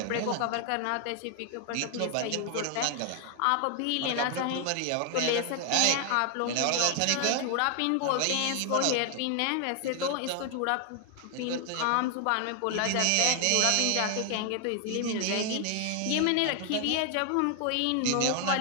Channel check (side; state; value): both; different; correlation 0.00